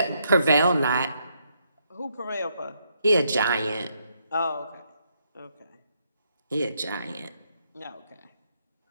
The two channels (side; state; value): both; inverted; correlation -0.75